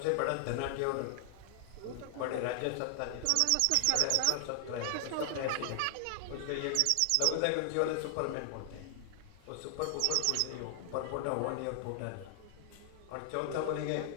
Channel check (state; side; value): different; both; correlation 0.00